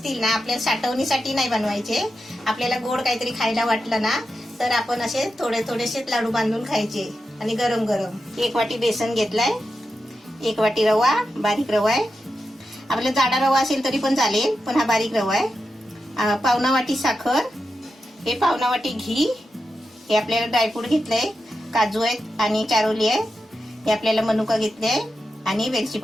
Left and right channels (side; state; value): both; normal; correlation 0.89